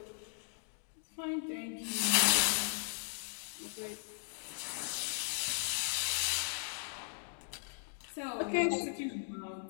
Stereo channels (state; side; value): silent; right; digital silence